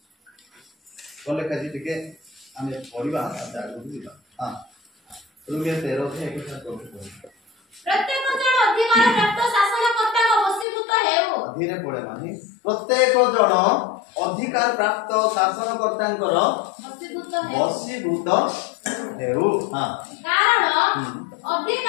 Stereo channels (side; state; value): right; drops out; at 10.7 s